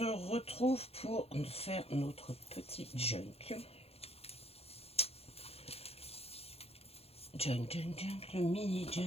retrouve pour faire notre petit junk. Junk, le mini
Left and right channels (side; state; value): right; late; 0.29 ms